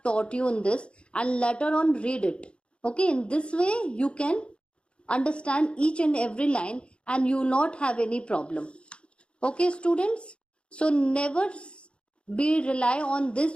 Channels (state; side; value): late; right; 0.057 ms